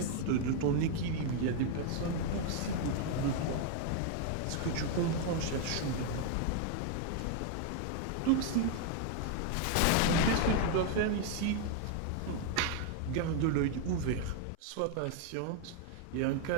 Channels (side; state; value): both; different; correlation 0.00